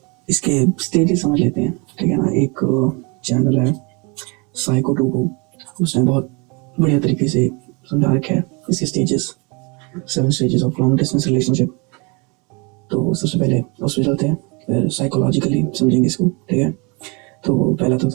इसके स्टेजेस समझ लेते हैं, ठीक है ना। एक चैनल है साइको2गो, उसने बहुत बढ़िया तरीके से समझा रखा है इसके stages, 7 stages of long distance relationship. तो सबसे पहले उस पर चलते हैं, फिर साइकोलॉजिकली समझेंगे इसको, ठीक है। तो पहला तो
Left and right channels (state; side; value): quieter; left; 30.0 dB